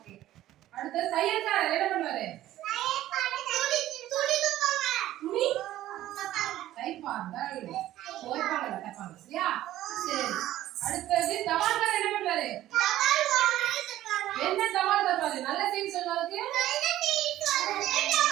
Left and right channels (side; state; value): left; quieter; 14.0 dB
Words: அடுத்து தையல்காரர் என்ன பண்ணுவாரு? துணி தைப்பார்கள். துவைப்பாங்க தைப்பாங்க. சரியா? சரி. அடுத்து தபால்காரர் என்ன பண்ணுவாரு? என்ன தபால் தருவாரு? நல்ல செய்தி சொல்றதுக்கு